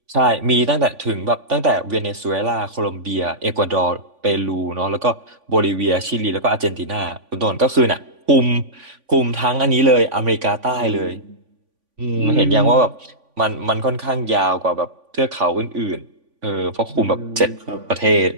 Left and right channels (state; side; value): late; left; 3.5 ms